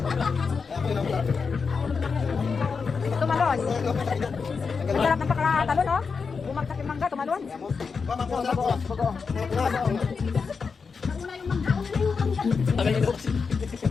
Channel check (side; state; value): right; quieter; 5.2 dB